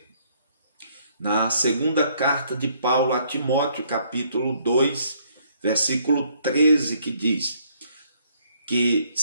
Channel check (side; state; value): both; inverted; correlation -0.67